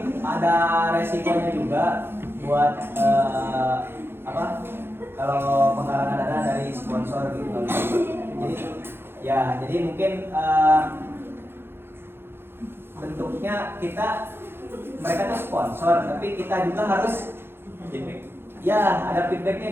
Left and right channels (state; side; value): late; left; 0.11 ms